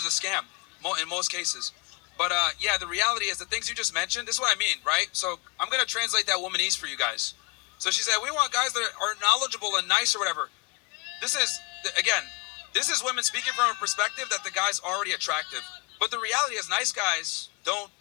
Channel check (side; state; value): right; quieter; 28.5 dB